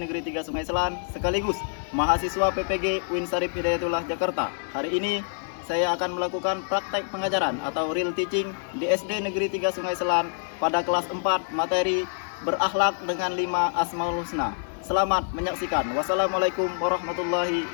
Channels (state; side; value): silent; right; 61 dB below the other